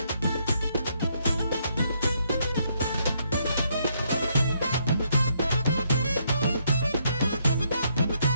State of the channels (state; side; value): inverted; both; correlation -0.73